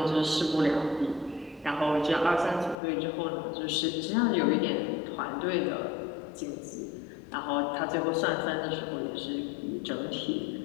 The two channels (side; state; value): right; drops out; at 2.8 s